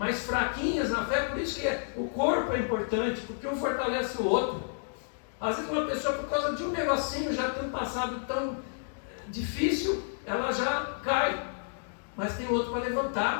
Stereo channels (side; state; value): right; silent; digital silence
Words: fraquinhas na fé, por isso que o corpo é importante, porque um fortalece o outro. Às vezes uma pessoa, por causa de um negocinho, já tem um passado tão difícil, ela já cai, mas tem outro para